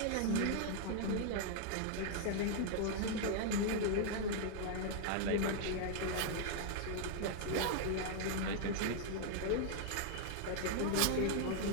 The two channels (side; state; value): both; different; correlation -0.01